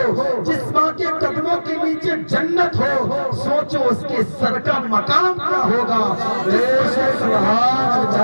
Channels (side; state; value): both; inverted; correlation -1.00